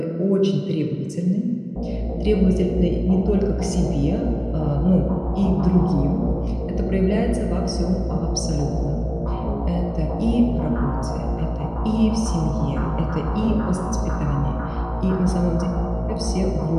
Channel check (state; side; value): identical; both; correlation 1.00